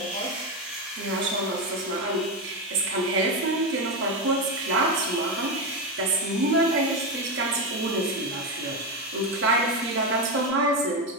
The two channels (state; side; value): normal; both; correlation 0.11